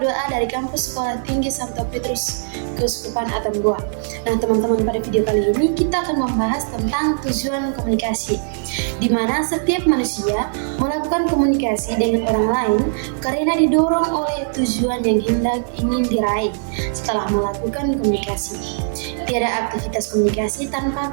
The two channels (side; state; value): left; silent; digital silence